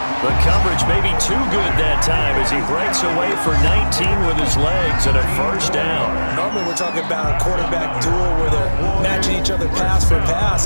The coverage may be too good that time as he breaks away for 19 with his legs and a 1st down. Normally we're talking about a quarterback duel where they're matching each other pass for pass.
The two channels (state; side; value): inverted; both; correlation -1.00